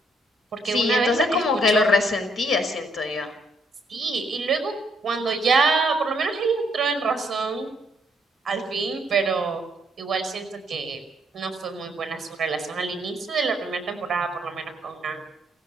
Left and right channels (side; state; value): both; normal; correlation 0.71